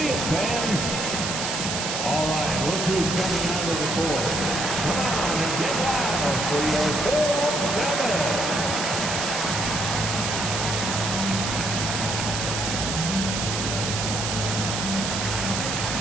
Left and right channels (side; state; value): right; noise; hiss, 3 dB below the sound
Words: it, fans. All right, look who's coming out of the court. Come on and get loud for your 4-7.